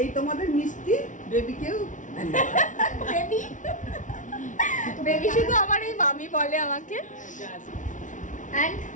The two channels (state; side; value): late; right; 0.37 ms